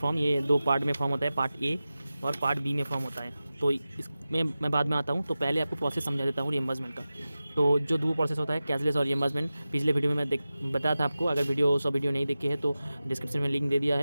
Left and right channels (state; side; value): inverted; both; correlation -0.95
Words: ये दो पार्ट में फॉर्म होता है, पार्ट ए और पार्ट बी में फॉर्म होता है। तो इसमें मैं बाद में आता हूँ, तो पहले आपको प्रोसेस समझा देता हूँ रियम्बर्समेंट का। तो जो दो प्रोसेस होता है कैशलेस और रियम्बर्समेंट, पिछले वीडियो में मैं बताया था आपको। अगर वीडियो नहीं देखी है तो डिस्क्रिप्शन में लिंक दे दिया